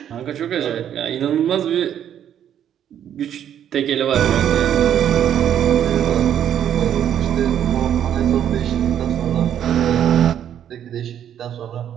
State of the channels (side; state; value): left; quieter; 9.9 dB